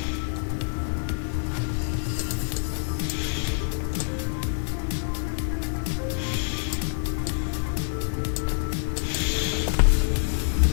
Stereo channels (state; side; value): silent; right; digital silence